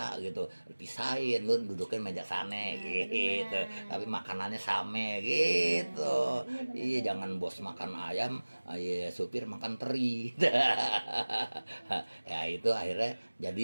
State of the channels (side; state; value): both; inverted; correlation -1.00